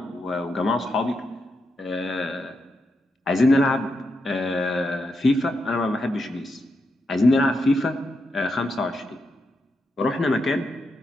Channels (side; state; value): both; normal; correlation 0.84